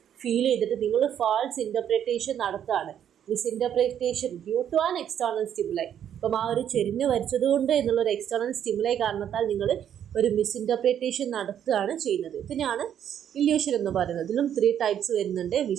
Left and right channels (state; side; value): quieter; left; 9.6 dB